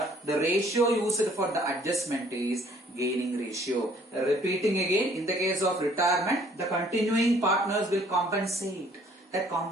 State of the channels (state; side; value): normal; both; correlation 0.59